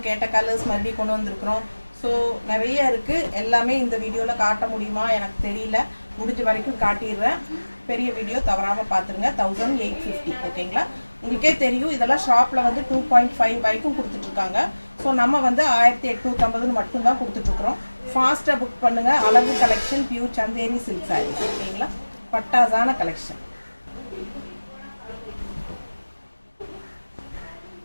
கேட்ட கலர்ஸ் மறுபடியும் கொண்டு வந்திருக்கிறோம். ஸோ நிறைய இருக்குது. எல்லாமே இந்த வீடியோவில் காட்ட முடியுமா எனக்கு தெரியல. முடிஞ்ச வரைக்கும் காட்டிடுறேன். பெரிய வீடியோ தவறாமல் பார்த்துருங்க. 1850 ஓகேங்களா? உங்களுக்கே தெரியும் இதெல்லாம் ஷாப்பில் வந்து 2.5 வரைக்கும் கொடுத்துட்ருக்காங்க. ஸோ நம்ம வந்து 1850 மட்டும்தான் கொடுத்துட்ருக்குறோம். ஃபாஸ்ட்டாக புக் பண்ணுங்கள். அழகு collection, pure Chanderi silk saris ஓகேங்களா? பட்டாசான கலெக்ஷன்.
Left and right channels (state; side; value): inverted; both; correlation -1.00